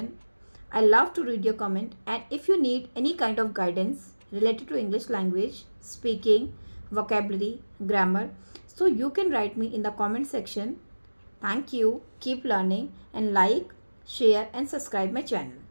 I love to read your comment. And if you need any kind of guidance related to English language, speaking, vocabulary, grammar, so you can write me in the comment section. Thank you. Keep learning and like, share and subscribe my channel.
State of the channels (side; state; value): both; inverted; correlation -1.00